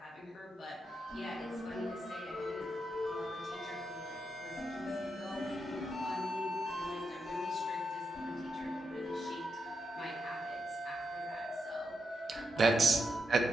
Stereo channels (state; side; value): normal; both; correlation 0.84